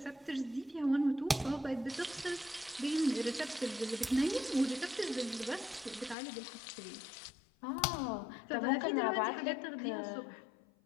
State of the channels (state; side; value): drops out; right; at 6.2 s